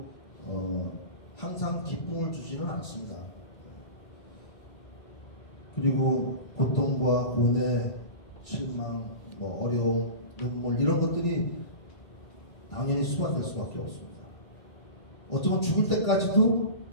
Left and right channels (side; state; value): right; late; 1.8 ms